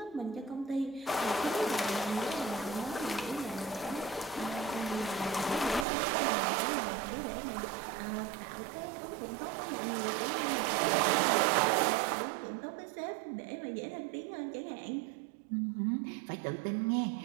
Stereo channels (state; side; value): drops out; left; at 5.9 s